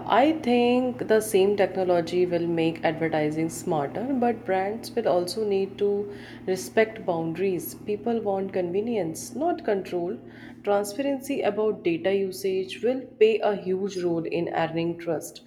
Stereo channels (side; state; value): both; identical; correlation 1.00